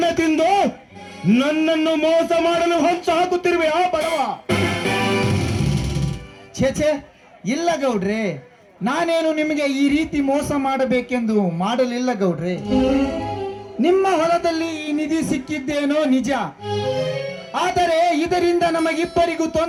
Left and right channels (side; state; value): both; identical; correlation 1.00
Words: ತಿಂದು ನನ್ನನ್ನು ಮೋಸ ಮಾಡಲು ಹೊಂಚು ಹಾಕುತ್ತಿರುವೆ ಆ ಬಡವ. ಛೇ, ಇಲ್ಲ ಗೌಡ್ರೆ, ನಾನೇನು ನಿಮಗೆ ಈ ರೀತಿ ಮೋಸ ಮಾಡಬೇಕೆಂದು ಮಾಡಲಿಲ್ಲ ಗೌಡ್ರೆ. ನಿಮ್ಮ ಹೊಲದಲ್ಲಿ ಈ ನಿಧಿ ಸಿಕ್ಕಿದ್ದೇನೋ ನಿಜ, ಆದರೆ ಇದರಿಂದ ನಮಗಿಬ್ಬರಿಗೂ